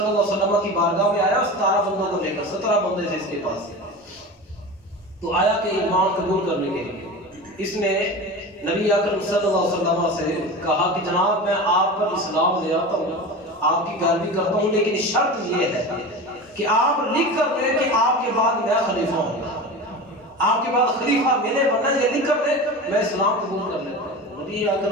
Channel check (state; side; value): normal; both; correlation 0.30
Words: علیہ وسلم کی بارگاہ میں آیا 17 بندوں کو لے کر، 17 بندے تھے اس کے پاس، تو آیا کہ ایمان قبول کرنے کے لیے اس نے نبی اکرم صلی اللہ علیہ وسلم سے کہا کہ جناب میں آپ پر اسلام لے آتا ہوں، آپ کی پیروی کرتا ہوں، لیکن شرط یہ ہے کہ آپ لکھ کر دیں کہ آپ کے بعد میں خلیفہ ہوں، آپ کے بعد خلیفہ میں نے بننا، یہ لکھ کر دیں میں اسلام قبول کر لیتا ہوں۔ نبی